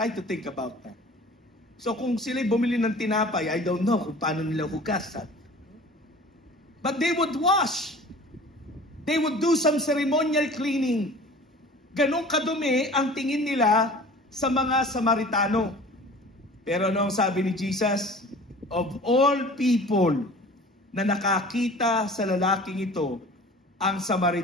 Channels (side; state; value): both; normal; correlation 0.43